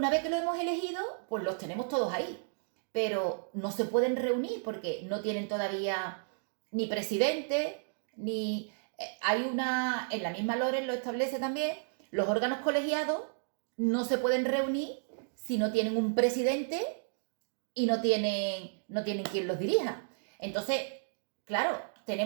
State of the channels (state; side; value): silent; left; digital silence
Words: vez que lo hemos elegido, pues los tenemos todos ahí, pero no se pueden reunir porque no tienen todavía ni presidente, ni... Hay una, en la misma LORES lo establece también, los órganos colegiados no se pueden reunir si no tienen un presidente y no tienen quien los dirija. Entonces, claro,